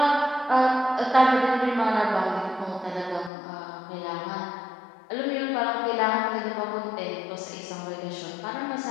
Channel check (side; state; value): right; drops out; at 3.3 s